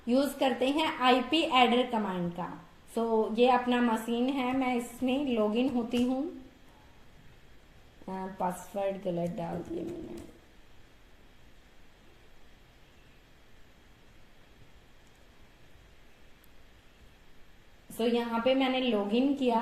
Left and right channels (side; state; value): both; identical; correlation 1.00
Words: यूज करते हैं आईपी एडर कमांड का। सो ये अपना मशीन है, मैं इसमें लॉगिन होती हूँ। पासवर्ड गलत डाल दिया मैंने। सो यहाँ पे मैंने लॉगिन किया।